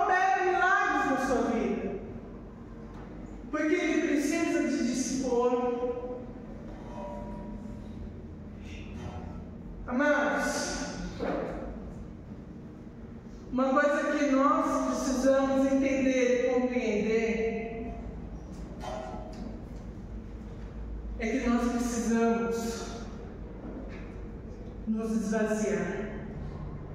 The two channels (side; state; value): both; identical; correlation 1.00